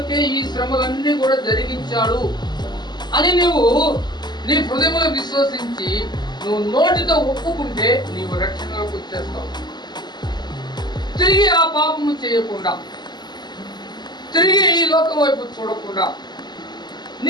ఈ శ్రమలన్నీ కూడా జరిగించాడు అని నువ్వు నీ హృదయంలో విశ్వసించి నువ్వు నోటితో ఒప్పుకుంటే నీవు రక్షణలోకి వచ్చేస్తావు. తిరిగి ఆ పాపము చేయకుండా, తిరిగి ఈ లోకం వైపు చూడకుండా,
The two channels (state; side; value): late; right; 0.21 ms